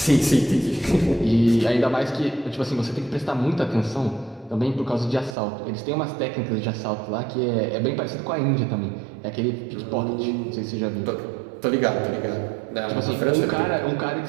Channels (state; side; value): drops out; left; at 5.4 s